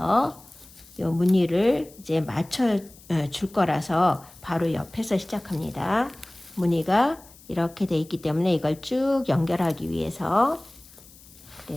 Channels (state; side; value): noise; left; hiss, 23 dB below the sound